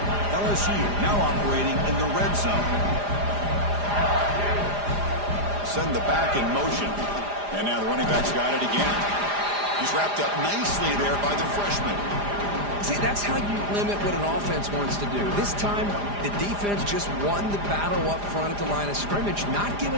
LSU now operating in the red zone. Send the back in motion. And now the running back's got it again. He's wrapped up nicely there by the freshman. See, that's how you limit what an offense wants to do. This time, the defense just won the battle up front at the line of scrimmage, not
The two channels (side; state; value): left; late; 4.9 ms